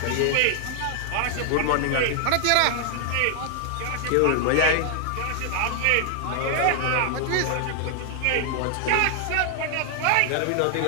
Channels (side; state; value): both; different; correlation 0.00